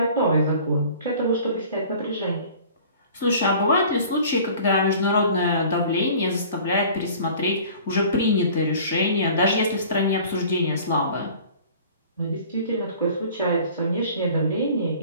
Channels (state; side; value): inverted; both; correlation -0.47